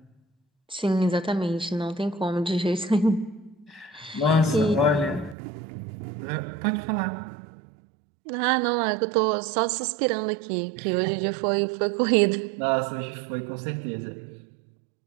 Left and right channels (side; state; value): left; drops out; at 5.4 s